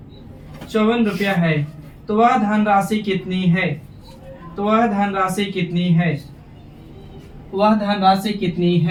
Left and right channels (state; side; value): identical; both; correlation 1.00